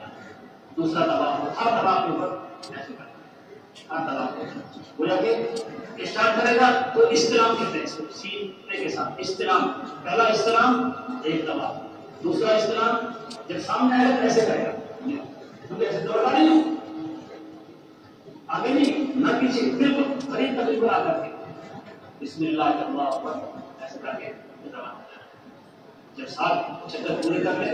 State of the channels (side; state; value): both; identical; correlation 1.00